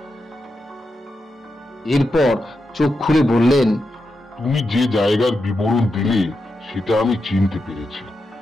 এরপর চোখ খুলে বললেন, তুমি যে জায়গার বিবরণ দিলে সেটা আমি চিনতে পেরেছি।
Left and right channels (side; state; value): both; normal; correlation 0.87